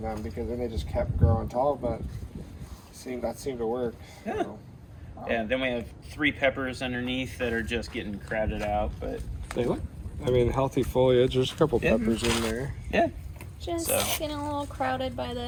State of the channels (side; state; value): both; identical; correlation 1.00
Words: them because then they just kept growing tall. But that seemed to work. Yeah. So. Yeah, then we have 3 peppers underneath that are just getting crowded out, but They look. I mean, healthy foliage. There's a couple Yeah. peppers in there. yeah. just So. getting a little crowded by